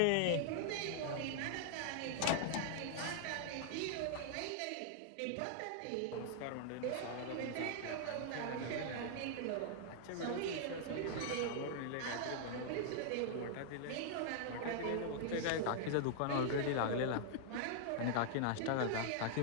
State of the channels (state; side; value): different; both; correlation -0.01